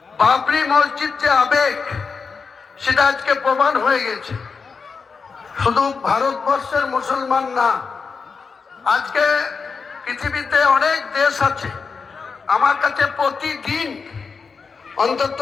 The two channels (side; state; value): right; quieter; 5.2 dB